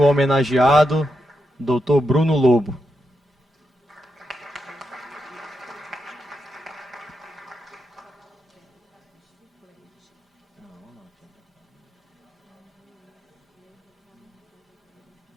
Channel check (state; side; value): normal; both; correlation 0.85